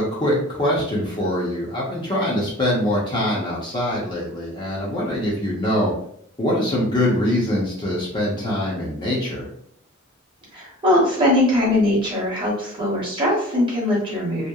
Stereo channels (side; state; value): both; normal; correlation 0.43